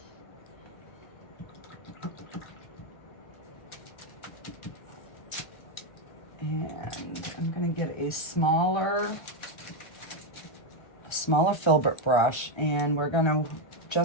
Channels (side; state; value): right; late; 1.3 ms